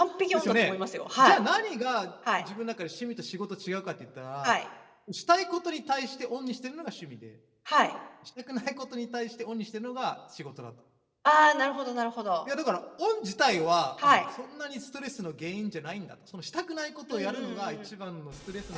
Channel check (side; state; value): both; identical; correlation 1.00